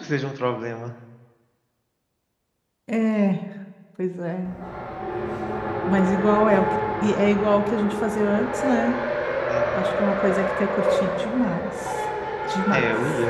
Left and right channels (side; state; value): both; identical; correlation 1.00